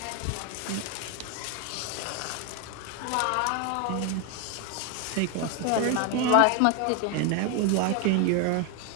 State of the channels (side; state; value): both; different; correlation 0.01